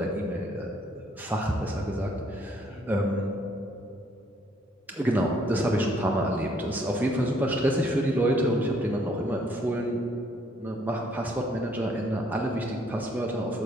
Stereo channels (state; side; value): normal; both; correlation 0.66